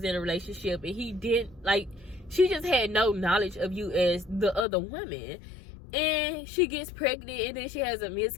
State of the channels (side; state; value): right; drops out; at 4.7 s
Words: in a relationship, and he didn't, like, she just had no knowledge of you as the other woman, and she gets pregnant, and then she has a